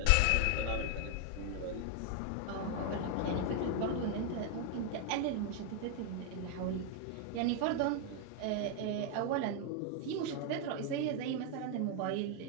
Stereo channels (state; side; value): different; both; correlation 0.00